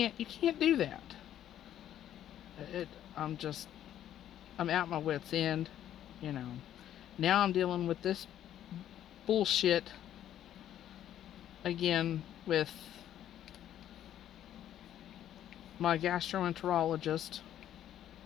do that. I'm at my wit's end, Now I'm dealing with this bullshit again with my gastroenterologist.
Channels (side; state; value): right; quieter; 11.2 dB